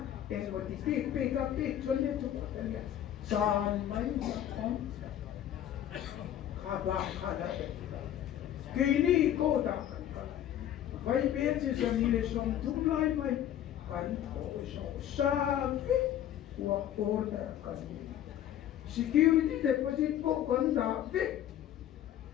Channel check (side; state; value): right; quieter; 11.2 dB